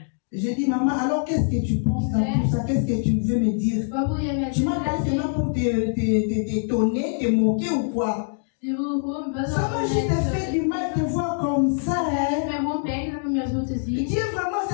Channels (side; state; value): right; silent; digital silence